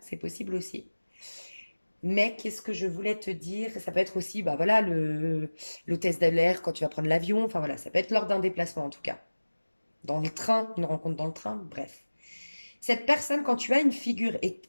c'est possible aussi. Mais qu'est-ce que je voulais te dire? Ça peut être aussi, bah voilà, l'hôtesse de l'air quand tu vas prendre l'avion. Enfin voilà, ça peut être lors d'un déplacement en tout cas. Dans le train, une rencontre dans le train, bref. Cette personne, quand tu as une figure, et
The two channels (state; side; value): inverted; both; correlation -1.00